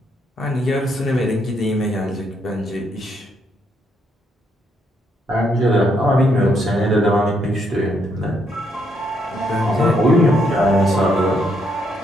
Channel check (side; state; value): both; normal; correlation 0.74